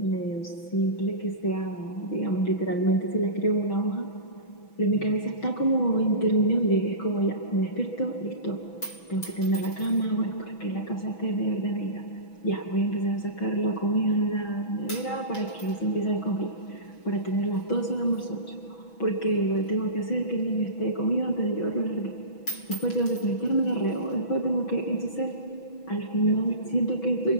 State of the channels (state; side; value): late; right; 6.1 ms